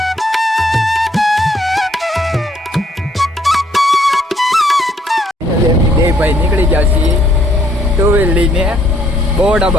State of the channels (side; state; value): both; normal; correlation 0.67